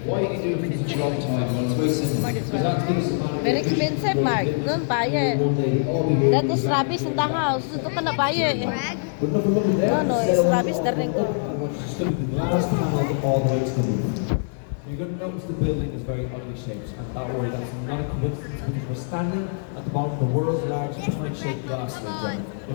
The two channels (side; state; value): right; silent; digital silence